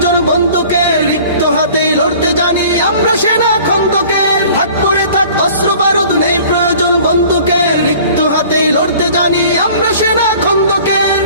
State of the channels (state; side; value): inverted; both; correlation -0.48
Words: বন্দুকের। রিক্ত হাতেই লড়তে জানি আমরা সেনা খন্দকের। থাক করে থাক অস্ত্র বারুদ, নেই প্রয়োজন বন্দুকের। রিক্ত হাতেই লড়তে জানি আমরা সেনা খন্দকের।